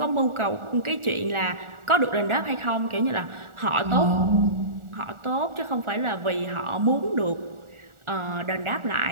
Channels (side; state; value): left; late; 1.4 ms